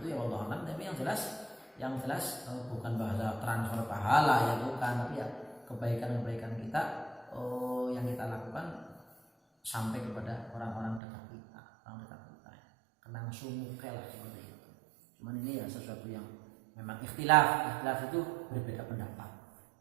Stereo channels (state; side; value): drops out; left; at 11.0 s